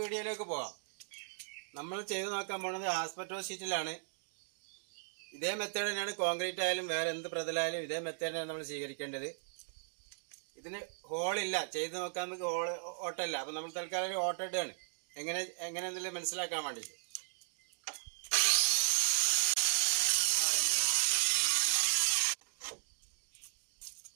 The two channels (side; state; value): left; silent; digital silence